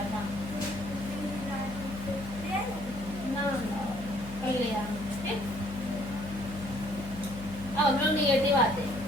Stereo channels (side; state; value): left; noise; hum, 12 dB below the sound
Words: था ना कर लिया ठीक अब हम लोग निगेटिव आते हैं